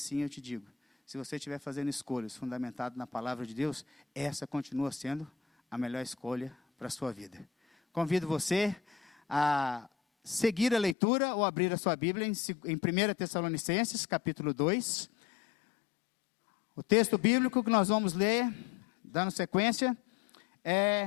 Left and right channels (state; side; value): drops out; right; at 11.0 s